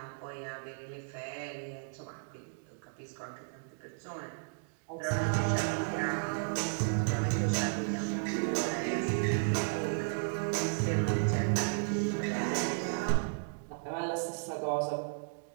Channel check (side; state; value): left; silent; digital silence